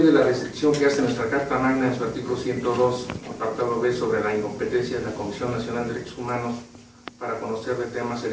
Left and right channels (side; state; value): both; identical; correlation 1.00